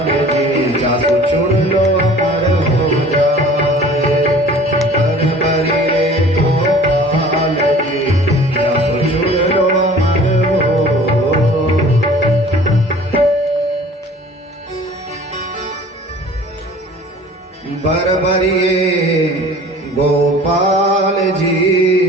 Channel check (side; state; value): both; normal; correlation 0.47